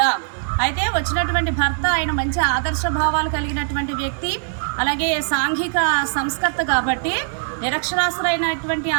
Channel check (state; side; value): silent; left; 63 dB below the other